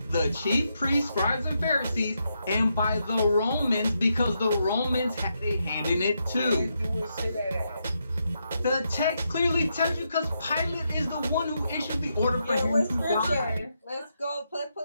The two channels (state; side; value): inverted; both; correlation -0.82